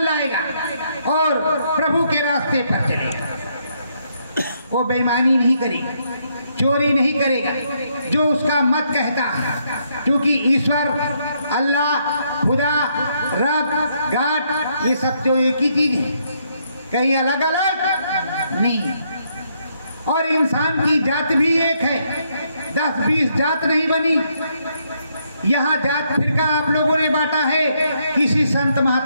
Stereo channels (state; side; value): inverted; both; correlation -0.74